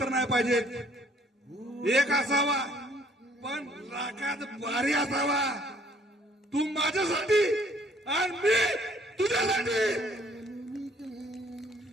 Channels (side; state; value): both; normal; correlation 0.61